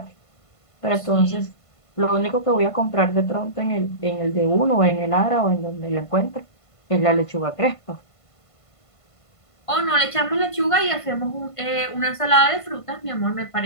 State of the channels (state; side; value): late; right; 1.5 ms